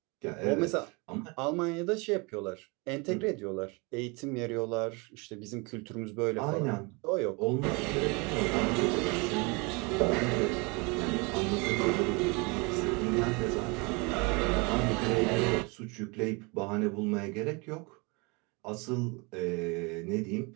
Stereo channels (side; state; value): left; quieter; 28.9 dB